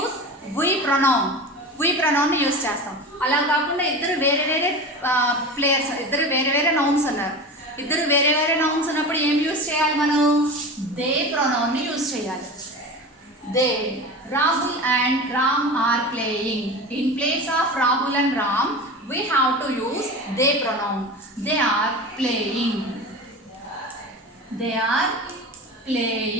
we pronoun. We pronoun use చేస్తాం. అలా కాకుండా ఇద్దరు వేరే వేరే ప్లేయర్స్, ఇద్దరు వేరే వేరే నౌన్స్ ఉన్నారు. ఇద్దరు వేరే వేరే నౌన్స్ ఉన్నప్పుడు ఏం యూజ్ చేయాలి మనం? దే ప్రొనౌన్ని యూజ్ చేయాలి. They. Rahul and Ram are playing. In place of Rahul and Ram we have to use they pronoun. They are playing. They are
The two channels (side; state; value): both; normal; correlation 0.30